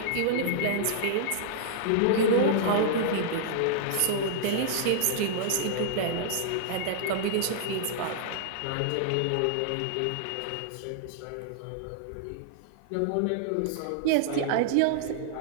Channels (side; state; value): both; different; correlation -0.01